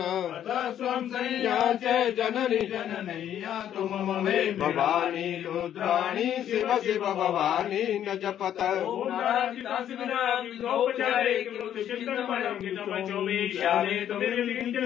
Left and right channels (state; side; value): quieter; right; 10.5 dB